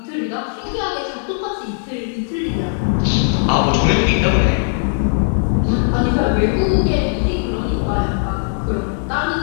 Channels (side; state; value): right; silent; digital silence